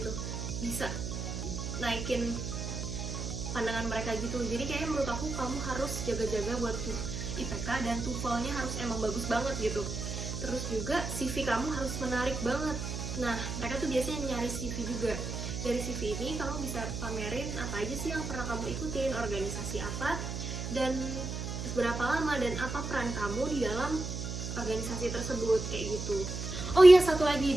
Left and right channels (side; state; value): right; noise; hum, 5 dB below the sound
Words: bisa naikin pandangan mereka gitu. Jadi kayaknya menurut aku kamu harus jaga-jaga buat IPK, dan TOEFL-nya harus emang bagus banget gitu. Terus juga CV kamu harus menarik banget. Nah, mereka tuh biasanya nyari CV juga. Dari CV ini kamu bisa pamerin apa aja sih yang pernah kamu ikutin, organisasi apa, dan berapa lama, dan apa peran kamu di dalam organisasi tersebut, kayak gitu. Oh iya, satu lagi,